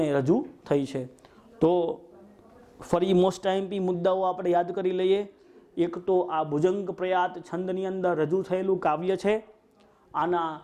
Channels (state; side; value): identical; both; correlation 1.00